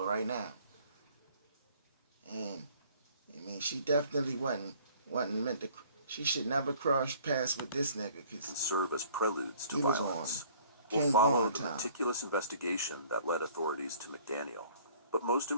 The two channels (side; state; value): both; inverted; correlation -0.54